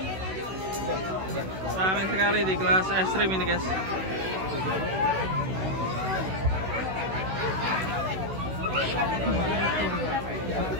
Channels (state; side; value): late; left; 16 ms